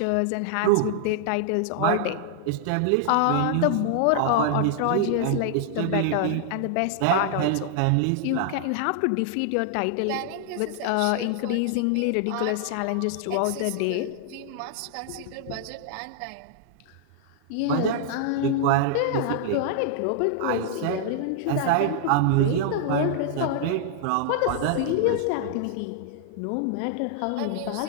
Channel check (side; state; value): both; different; correlation -0.01